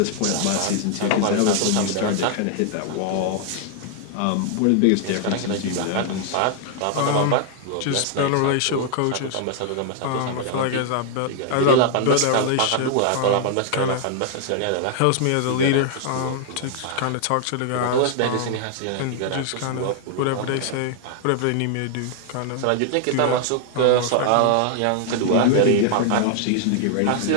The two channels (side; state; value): both; different; correlation 0.00